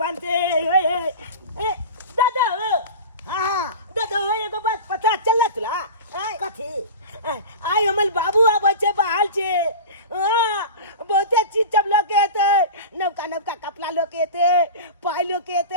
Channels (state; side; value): inverted; both; correlation -0.31